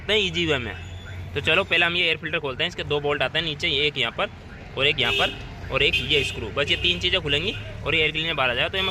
हैं ईजी वे में। तो चलो पहले हम ये एयर फिल्टर खोलते हैं। इसके 2 बोल्ट आते हैं नीचे, एक यहाँ पर और एक यहाँ पर और एक ये स्क्रू, बस ये 3 चीज़ें खुलेंगी और ये एयर क्लीनर बाहर आ जाएगा। तो ये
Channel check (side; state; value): both; identical; correlation 1.00